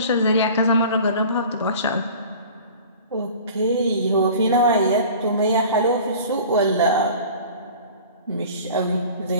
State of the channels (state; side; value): inverted; both; correlation -0.42